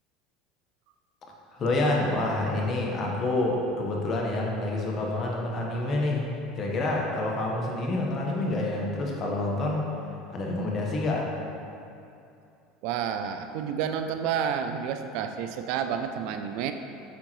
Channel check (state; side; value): normal; both; correlation 0.45